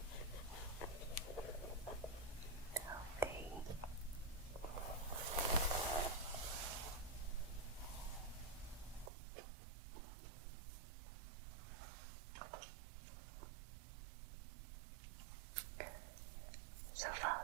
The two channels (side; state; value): left; drops out; at 9.1 s